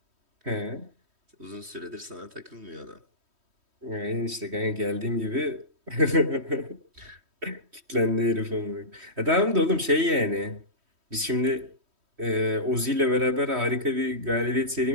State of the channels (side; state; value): left; late; 3.1 ms